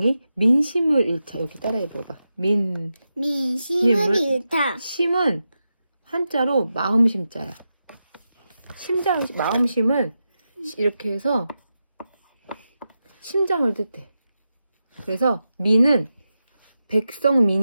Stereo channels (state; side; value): inverted; both; correlation -0.90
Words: 민심을 잃자. 여기 따라해봐봐. 민심을 잃다. 심은 한자로 마음심자야. 마음심은 이렇게 해서 심장을 뜻해. 그래서 민은